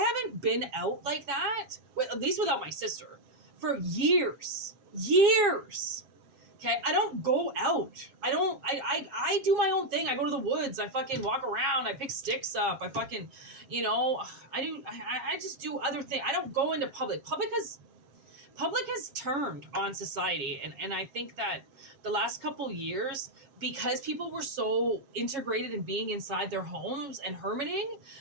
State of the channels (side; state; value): left; late; 7.4 ms